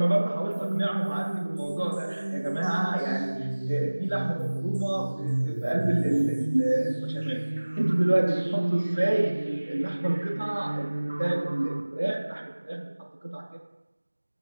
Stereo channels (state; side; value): inverted; both; correlation -1.00